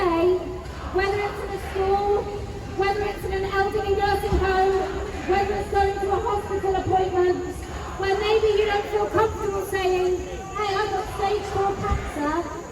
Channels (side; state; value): both; identical; correlation 1.00